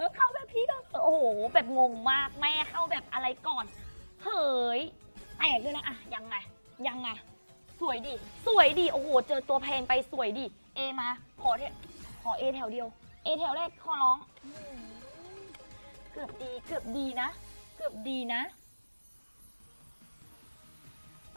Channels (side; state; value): both; inverted; correlation -1.00